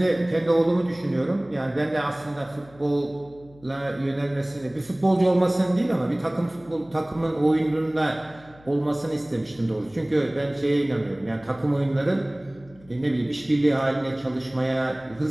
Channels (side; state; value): left; noise; hum, 25 dB below the sound